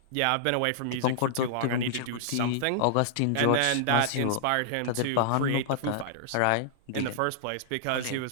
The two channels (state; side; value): different; both; correlation -0.01